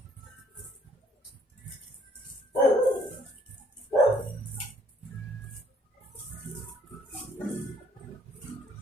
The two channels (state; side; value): normal; both; correlation 0.64